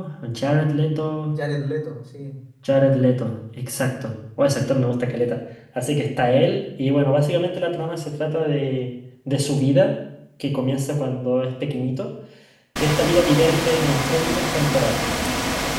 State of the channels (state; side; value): identical; both; correlation 1.00